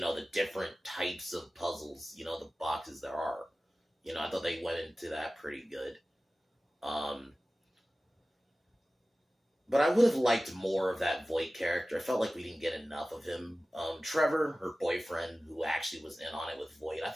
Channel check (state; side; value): normal; both; correlation 0.96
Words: know, the different types of puzzles, the boxes there are. I thought they went into that pretty good. But I would have liked more of that Voight character. I felt like we didn't get enough of him. Trevor, her boyfriend, who actually was in on it with Voight, I